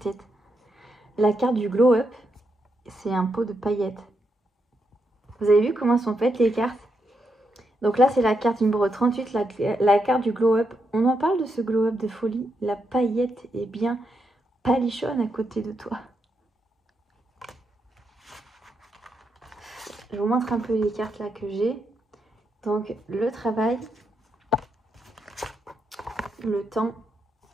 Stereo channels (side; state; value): both; normal; correlation 0.82